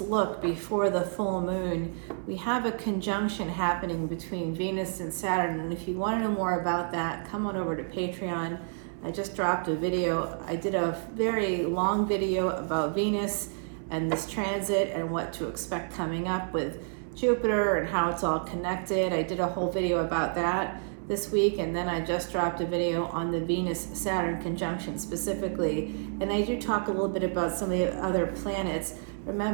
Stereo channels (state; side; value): silent; left; 58 dB below the other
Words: look before the full moon. We have a conjunction happening between Venus and Saturn, and if you want to know more about that, come on over to Patreon. I just dropped a video. I did a very long video about Venus and this transit and what to expect coming up with Jupiter and how it's all connected. I did a whole video about that this week, and then I just dropped a video on the Venus-Saturn conjunction specifically. And I do talk a little bit about some of the other planets.